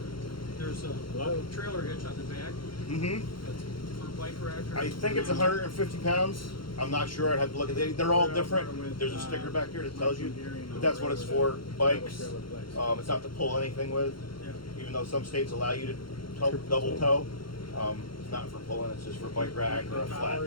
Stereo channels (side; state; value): right; late; 0.73 ms